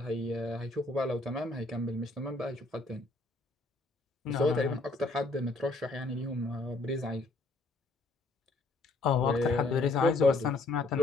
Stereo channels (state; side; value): quieter; right; 3.2 dB